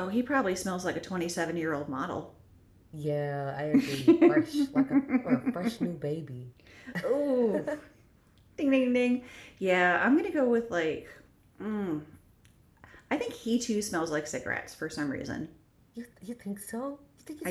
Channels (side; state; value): both; identical; correlation 1.00